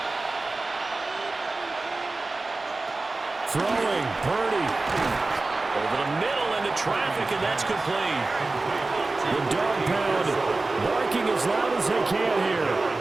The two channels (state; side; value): quieter; left; 3.3 dB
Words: Throwing, Purdy. Over the middle into traffic, and that's complete. The dog pound barking as loud as they can here.